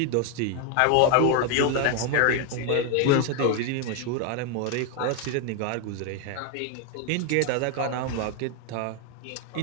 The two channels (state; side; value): different; both; correlation 0.01